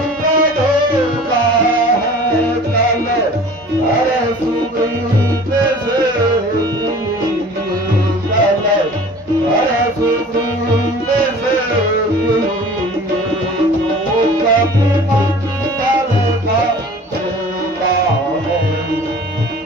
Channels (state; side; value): normal; both; correlation 0.45